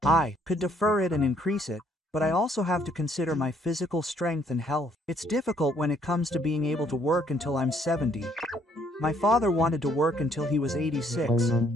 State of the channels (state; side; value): normal; both; correlation 0.66